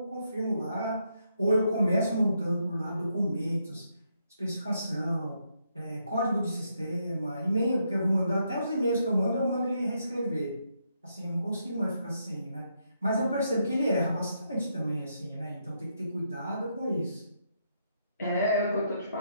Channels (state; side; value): inverted; both; correlation -0.78